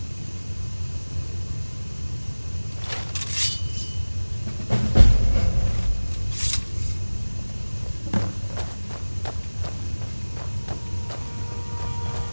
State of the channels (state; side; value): inverted; both; correlation -1.00